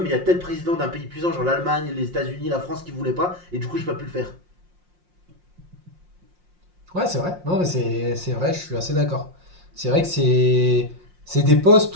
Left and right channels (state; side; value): late; left; 5.6 ms